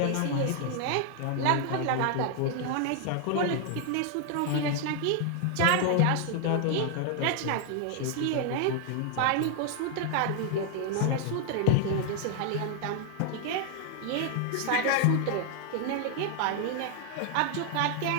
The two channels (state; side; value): different; both; correlation 0.00